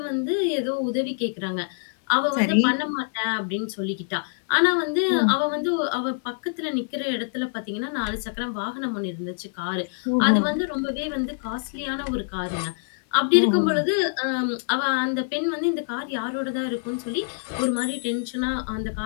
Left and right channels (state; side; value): silent; right; 57 dB below the other